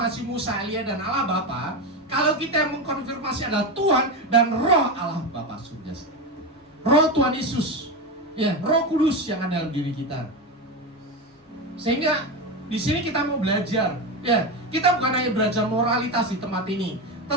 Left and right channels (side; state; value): both; normal; correlation 0.16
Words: Musa, Elia dan Allah Bapa, kalau kita yang mengkonfirmasi adalah Tuhan dan Roh Allah Bapa surga. Roh Tuhan Yesus, ya, Roh Kudus yang ada dalam diri kita. Sehingga di sini kita mau belajar, ya, kita bukan hanya belajar moralitas di tempat ini,